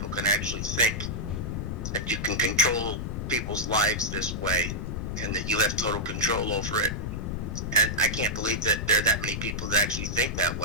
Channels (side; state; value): left; noise; rumble, 4 dB below the sound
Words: can actually think that you can control people's lives this way and that you have total control over it. And I can't believe that there are that many people that actually think that